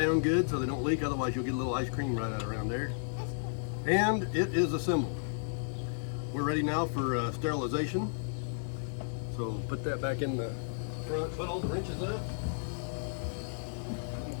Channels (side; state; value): right; silent; 56 dB below the other